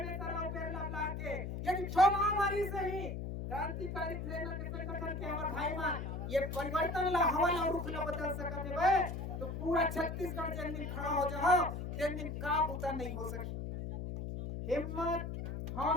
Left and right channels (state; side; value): noise; left; hum, 5 dB below the sound